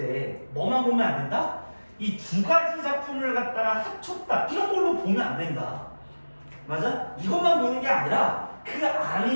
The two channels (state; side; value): inverted; both; correlation -1.00